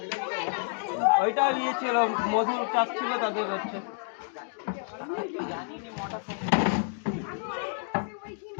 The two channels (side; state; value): right; silent; 58 dB below the other